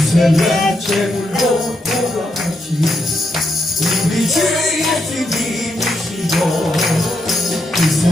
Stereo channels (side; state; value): both; normal; correlation 0.82